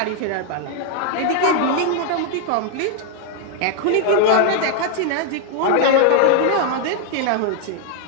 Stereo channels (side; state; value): both; different; correlation 0.00